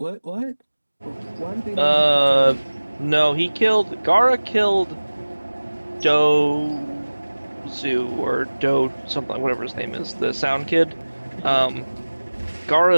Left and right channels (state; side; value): inverted; both; correlation -1.00